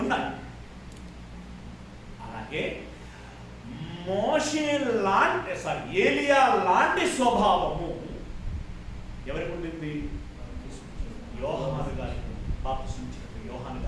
ఉన్నాయి. అలాగే ఏలియా లాంటి స్వభావము ఎవరికి ఉండింది? యోహాను గారికి, బాప్తిస్మిచ్చిన యోహాను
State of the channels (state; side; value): identical; both; correlation 1.00